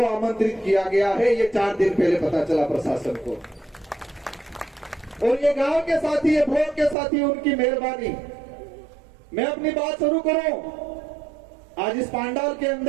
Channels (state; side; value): drops out; left; at 7.0 s